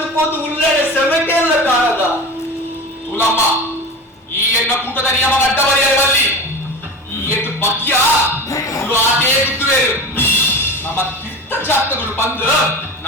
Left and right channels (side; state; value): both; normal; correlation 0.30